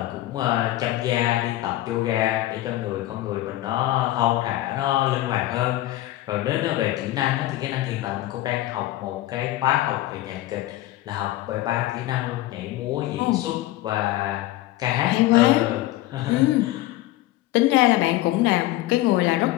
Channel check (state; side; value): quieter; right; 15.9 dB